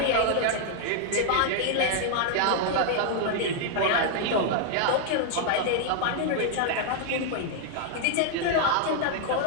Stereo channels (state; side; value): different; both; correlation -0.01